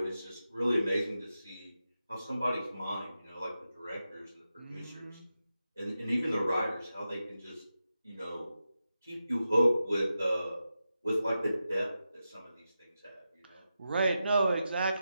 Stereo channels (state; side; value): inverted; both; correlation -0.90